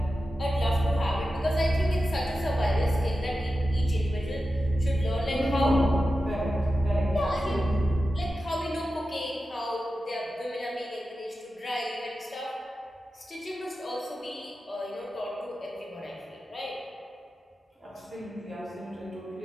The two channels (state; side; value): normal; both; correlation 0.92